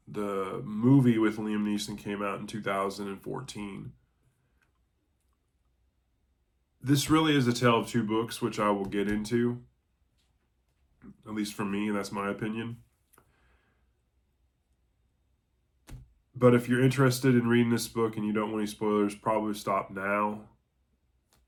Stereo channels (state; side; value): identical; both; correlation 1.00